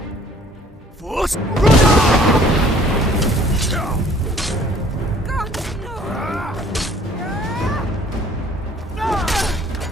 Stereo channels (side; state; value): both; normal; correlation 0.55